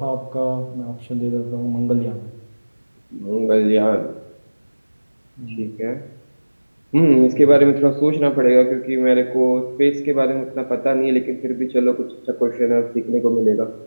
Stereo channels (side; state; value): both; inverted; correlation -1.00